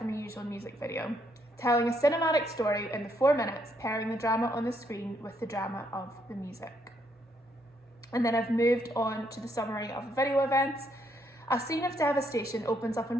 a usual music video, telling a cinematic story in the 4 minutes, pairing the drama on the screen with the drama of the music. And then I've moved on to the summary of the video events. A scene of devastation opens up in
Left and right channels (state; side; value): normal; both; correlation 0.73